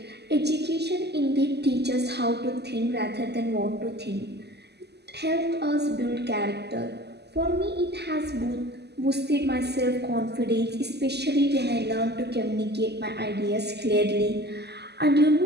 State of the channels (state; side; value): late; left; 0.49 ms